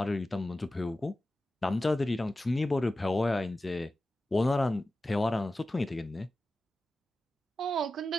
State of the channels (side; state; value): both; normal; correlation 0.94